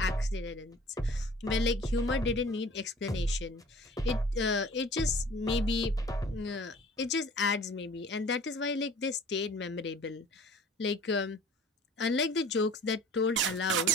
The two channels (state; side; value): normal; both; correlation 0.47